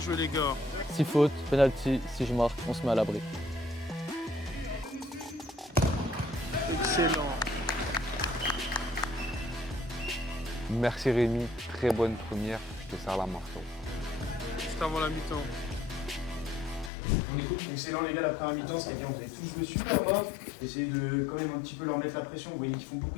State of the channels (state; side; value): drops out; right; at 16.9 s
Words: les gars. 6 fautes, penalty, si je marque, on se met à l'abri. Excellent. Merci Rémi, très bonne première, je te serre la main. Juste avant la mi-temps. Excellent les gars, la première mi-temps, c'était bien, vous avez tous joué super bas. Essayez de quand même un petit peu leur mettre la pression, vous voyez qu'ils font